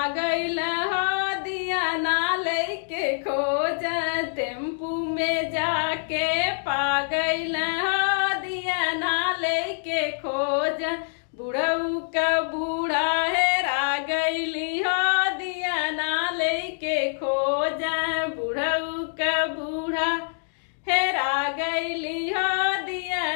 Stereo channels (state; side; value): silent; right; digital silence